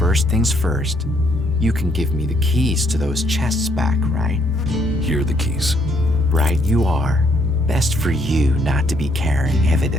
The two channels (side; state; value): both; normal; correlation 0.70